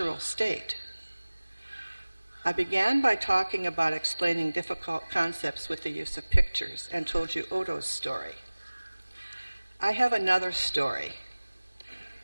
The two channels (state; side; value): inverted; both; correlation -1.00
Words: state. I began by talking about explaining difficult concepts with the use of pictures and told you Odo's story. I have another story,